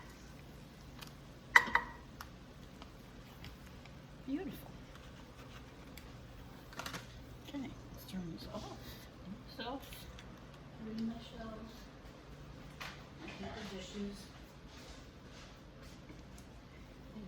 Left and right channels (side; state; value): both; identical; correlation 1.00